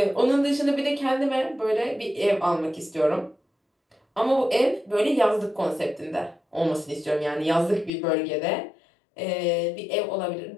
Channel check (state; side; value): drops out; right; at 7.9 s